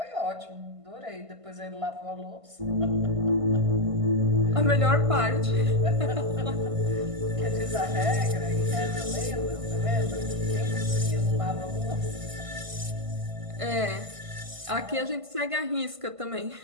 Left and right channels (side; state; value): left; late; 1.5 ms